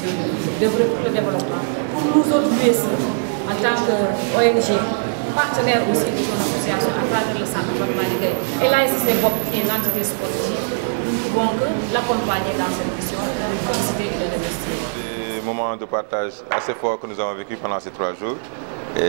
de développement. Pour nous autres USE, en tant qu'ONG, partenaire aussi de son association à travers le centre de Maligué et l'ASC BOP qui est l'entité sportive, nous ne pouvons que l'accompagner dans cette mission, le féliciter et le remercier. Des moments de partage assez forts que nous avons vécu pendant ces 3 jours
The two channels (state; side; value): silent; left; digital silence